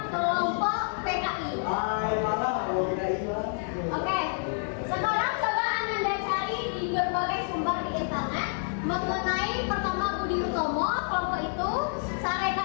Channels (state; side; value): silent; right; digital silence